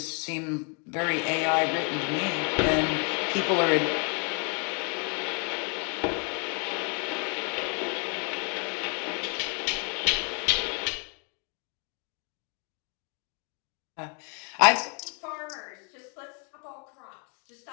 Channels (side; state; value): right; quieter; 38.2 dB